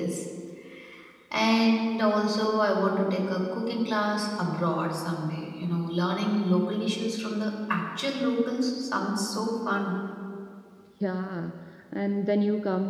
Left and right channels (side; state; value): both; identical; correlation 1.00